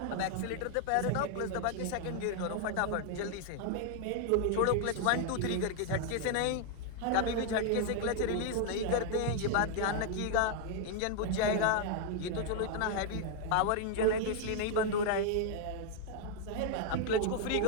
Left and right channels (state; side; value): different; both; correlation 0.00